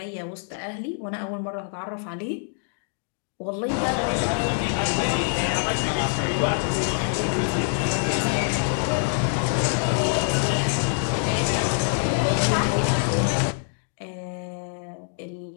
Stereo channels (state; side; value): silent; right; digital silence